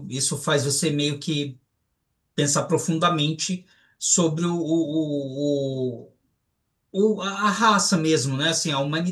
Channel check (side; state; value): both; identical; correlation 1.00